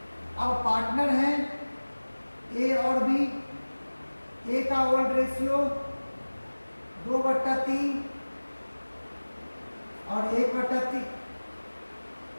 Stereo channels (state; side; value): inverted; both; correlation -1.00